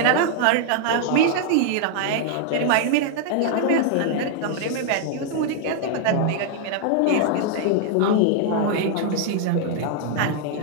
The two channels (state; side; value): different; both; correlation 0.00